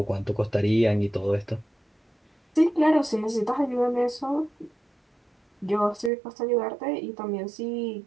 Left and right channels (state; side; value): drops out; left; at 6.1 s